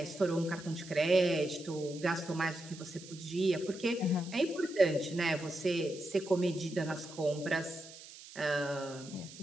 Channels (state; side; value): noise; right; hiss, 17 dB below the sound